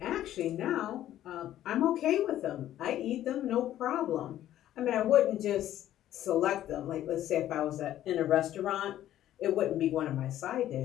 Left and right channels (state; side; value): quieter; right; 12.6 dB